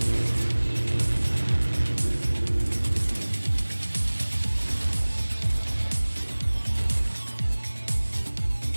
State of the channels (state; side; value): inverted; both; correlation -1.00